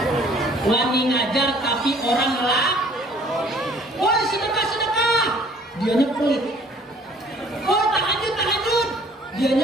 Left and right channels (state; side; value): normal; both; correlation 0.56